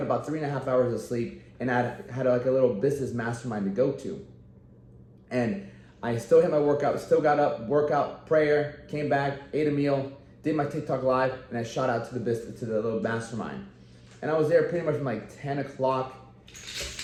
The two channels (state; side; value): identical; both; correlation 1.00